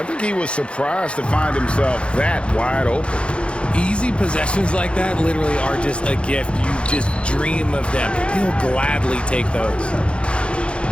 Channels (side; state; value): right; late; 0.058 ms